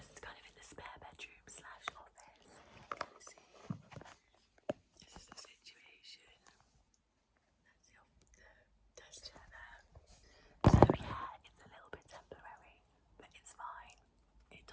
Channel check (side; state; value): both; identical; correlation 1.00